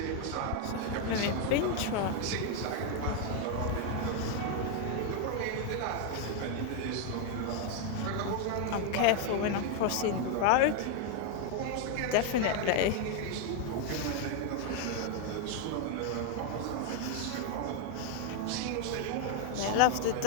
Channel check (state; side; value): different; both; correlation 0.00